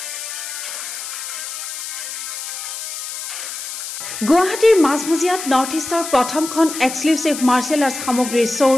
গুৱাহাটীৰ মাজমজিয়াত নৰ্থ ইষ্টৰ প্ৰথমখন এক্সক্লুচিভ মাৰ্চেল আৰ্টছ সামগ্ৰীৰ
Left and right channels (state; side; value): noise; left; hiss, 7 dB below the sound